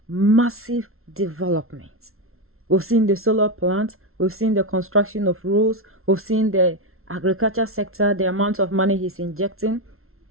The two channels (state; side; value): late; left; 0.62 ms